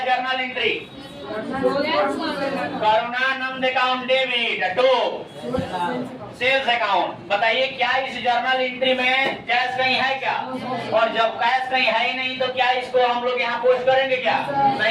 journal entry Karunanand account debit to sales account. बताइए क्या इस जर्नल एंट्री में कैश कहीं है क्या? और जब कैश कहीं है ही नहीं तो क्या इसको हम लोग यहाँ पोस्ट करेंगे क्या?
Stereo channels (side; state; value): both; identical; correlation 1.00